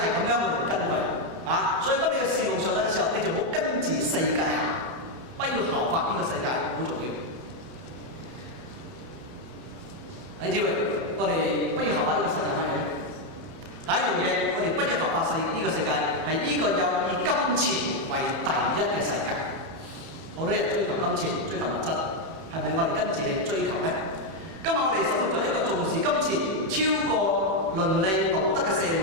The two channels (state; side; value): late; left; 31 ms